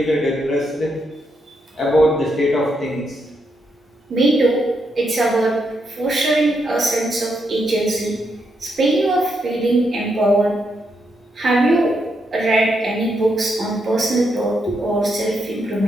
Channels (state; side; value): normal; both; correlation 0.80